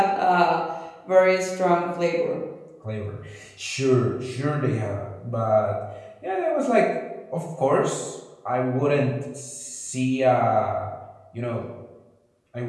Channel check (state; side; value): identical; both; correlation 1.00